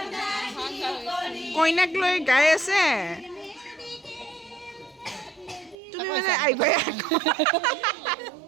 কইনাক লৈ গাই আছে। তুমি মানে আহিবাই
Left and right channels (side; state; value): left; drops out; at 5.8 s